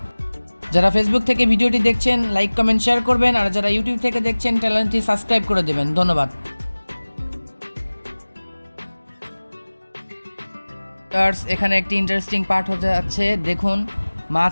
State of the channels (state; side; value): inverted; both; correlation -1.00